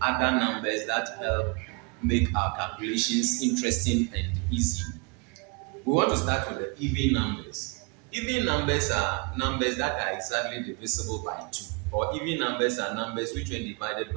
other numbers that help make our calculations interesting and easy. We want to start with the even numbers. Even numbers are numbers that are exactly divisible by 2, or even numbers are numbers which when divided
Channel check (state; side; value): quieter; left; 31.3 dB